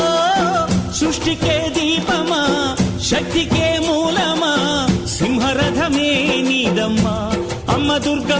సృష్టికే దీపమా శక్తికే మూలమా సింహరథమే నీదమ్మా అమ్మ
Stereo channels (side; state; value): both; identical; correlation 1.00